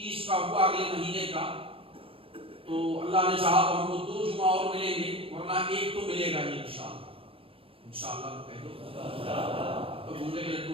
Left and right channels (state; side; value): late; left; 0.27 ms